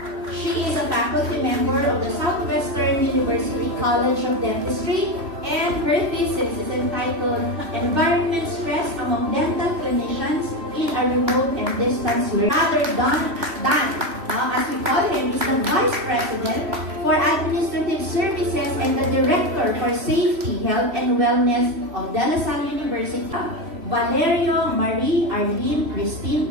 She is a faculty member of the Southwestern University College of Dentistry, and her thesis is entitled Environment Stress Among Dental Clinicians in a Remote and Distance Learning. Father Dan, as we call him, is the Vice President for Administrative Services and the Director for Safety, Health, and Wellness of De La Salle University. Valerio Marie Arlene Christine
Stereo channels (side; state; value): left; late; 3.1 ms